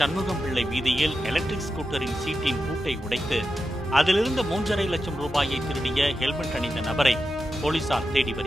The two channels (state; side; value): normal; both; correlation 0.90